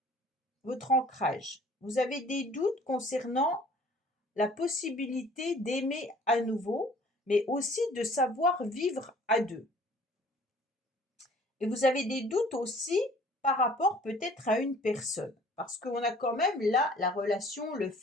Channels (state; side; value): normal; both; correlation 0.52